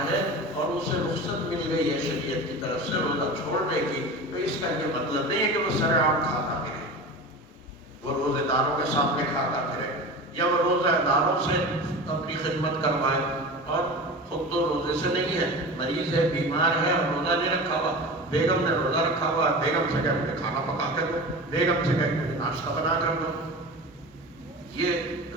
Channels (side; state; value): both; normal; correlation 0.32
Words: ہے اور اسے رخصت مل گئی ہے شریعت کی طرف سے روزہ چھوڑنے کی تو اس کا یہ مطلب نہیں ہے کہ وہ سرعام کھاتا پھرے، وہ روزے داروں کے سامنے کھاتا پھرے یا وہ روزہ داروں سے اپنی خدمت کروائے. اور خود تو روزے سے نہیں ہے، مریض ہے، بیمار ہے اور روزہ نہیں رکھا ہوا. بیگم نے روزہ رکھا ہوا، بیگم سے کہہ مجھے کھانا پکا کر دو، بیگم سے کہہ مجھے ناشتہ بنا کر دو. یہ